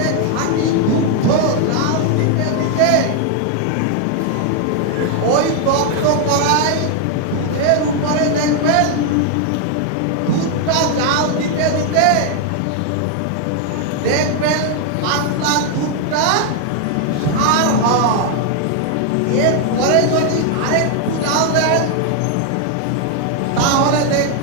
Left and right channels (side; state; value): both; different; correlation 0.00